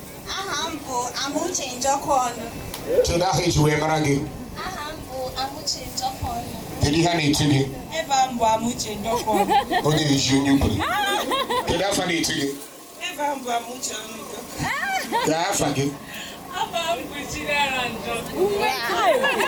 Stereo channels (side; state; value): both; identical; correlation 1.00